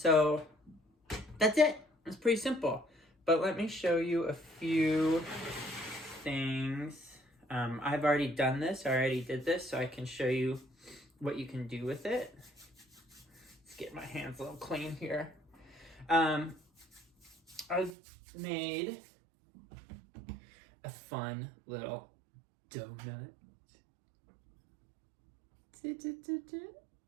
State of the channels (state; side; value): drops out; left; at 17.9 s